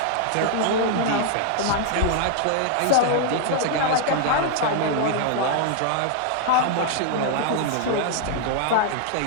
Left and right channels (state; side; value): different; both; correlation 0.00